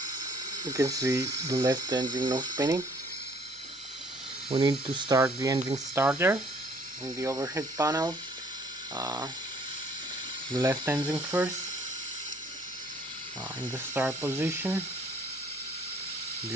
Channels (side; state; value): left; noise; hum, 29 dB below the sound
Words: You can see the left engine no spinning. We need to start the engine starter in the overhead panel. The left engine first. In the start position, the